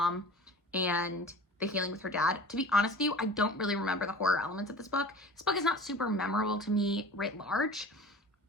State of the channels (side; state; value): both; normal; correlation 0.40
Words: and the healing with her dad. To be honest with you, I don't really remember the horror elements of this book. This book is not super memorable to me writ large.